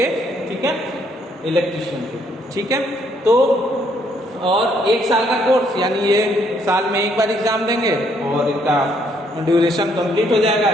ठीक है, इलेक्ट्रीशियन के, ठीक है। तो और 1 साल का कोर्स, यानी ये साल में 1 बार एग्ज़ाम देंगे और इनका ड्यूरेशन कंप्लीट हो जाएगा,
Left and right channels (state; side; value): normal; both; correlation 0.69